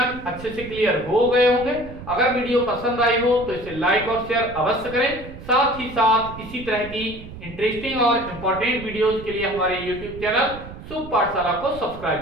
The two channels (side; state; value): right; noise; rumble, 14 dB below the sound